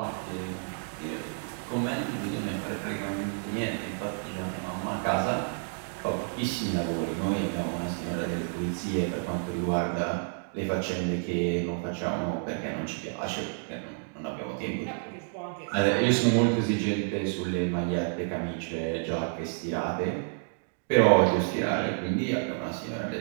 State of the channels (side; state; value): left; silent; 58 dB below the other